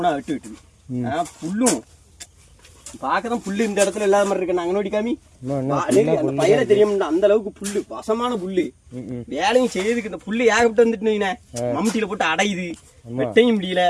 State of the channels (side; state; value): both; identical; correlation 1.00